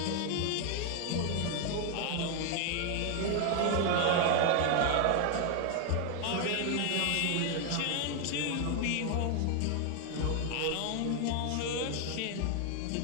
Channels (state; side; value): different; both; correlation 0.00